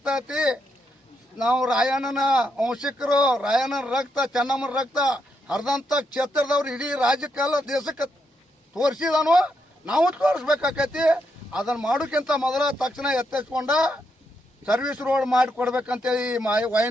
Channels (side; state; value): both; normal; correlation 0.80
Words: ನಾವು ರಾಯಣ್ಣನ ವಂಶಿಕರು, ರಾಯಣ್ಣನ ರಕ್ತ, ಚೆನ್ನಮ್ಮನ ರಕ್ತ ಹರಿದಂತ ಕ್ಷೇತ್ರದವ್ರು ಇಡೀ ರಾಜ್ಯಕ್ಕೆಲ್ಲ ದೇಶಕ್ಕೆ ತೋರಿಸಿದಾನು, ನಾವು ತೋರಿಸ್ಬೇಕಾಕೈತಿ. ಅದನ್ನ ಮಾಡೋಕ್ಕಿಂತ ಮೊದಲ ತಕ್ಷಣ ಎತ್ತಿಸ್ಕೊಂಡ ಸರ್ವಿಸ್ ರೋಡ್ ಮಾಡಿ ಕೊಡ್ಬೇಕಂತೇಳಿ